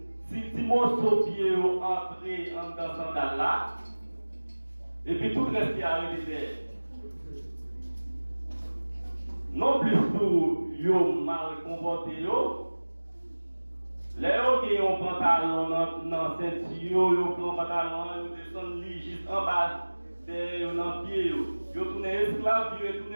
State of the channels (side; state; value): both; inverted; correlation -1.00